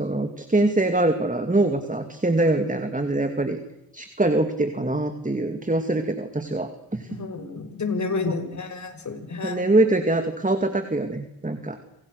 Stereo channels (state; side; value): normal; both; correlation 0.53